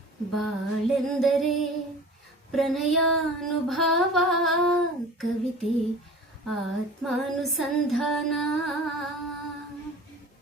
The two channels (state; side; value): normal; both; correlation 0.40